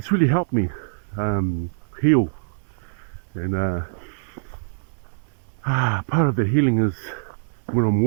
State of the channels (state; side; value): silent; left; 60 dB below the other